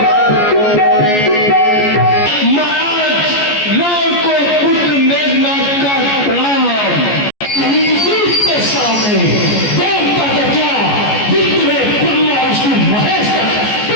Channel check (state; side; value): late; right; 14 ms